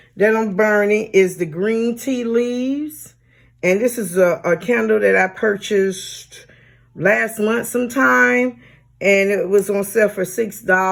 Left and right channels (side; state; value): both; identical; correlation 1.00